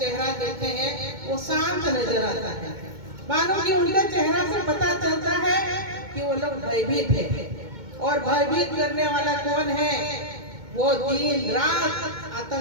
देखते हैं वो शांत नजर आता है, मानो कि उनका चेहरा से पता चलता है कि वो लोग भयभीत है। और भयभीत करने वाला कौन है, वो दिन रात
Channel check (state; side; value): late; left; 2.2 ms